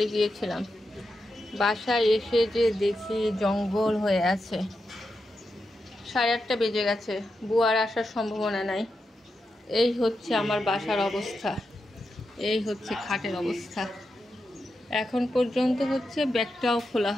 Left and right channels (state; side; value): normal; both; correlation 0.87